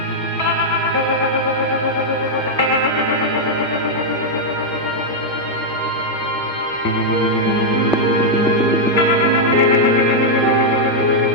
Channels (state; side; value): normal; both; correlation -0.02